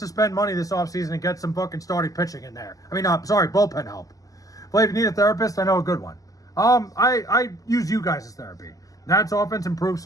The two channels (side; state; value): right; late; 0.17 ms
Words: spend money this offseason and get some fucking starting pitching in there. I mean, bullpen help. But if you need a therapist, I know a good one. I use you guys as therapy. Nats offense improved